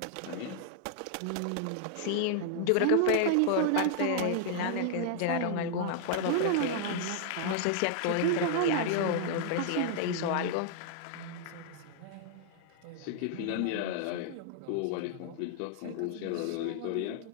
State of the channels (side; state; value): both; different; correlation -0.01